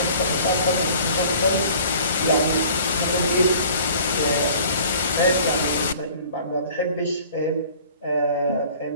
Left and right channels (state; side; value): inverted; both; correlation -0.50